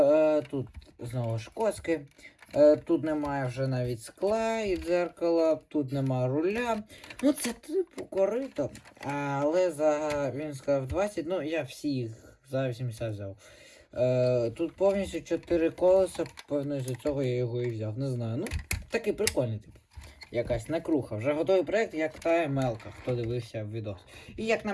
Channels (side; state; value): both; identical; correlation 1.00